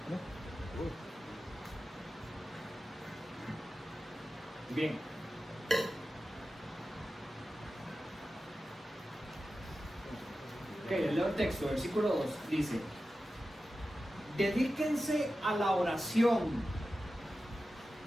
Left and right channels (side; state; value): both; normal; correlation 0.93